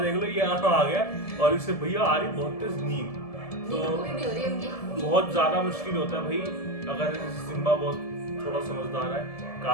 देख लो ये यहाँ आ गया और इससे भैया आ रही बहुत तेज नींद, तो बहुत ज्यादा मुश्किल होता है भाई अगर सिम्बा बहुत थोड़ा समझदार है।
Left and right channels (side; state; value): right; late; 1.7 ms